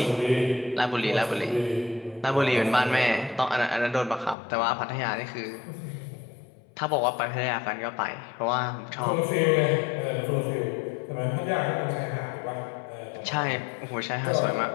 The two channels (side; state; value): right; drops out; at 4.4 s